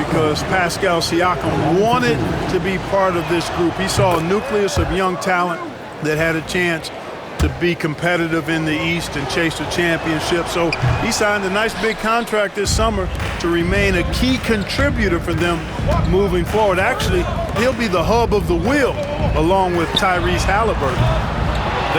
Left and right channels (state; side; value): identical; both; correlation 1.00